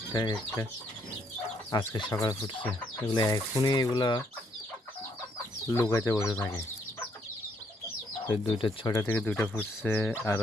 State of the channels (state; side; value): normal; both; correlation 0.71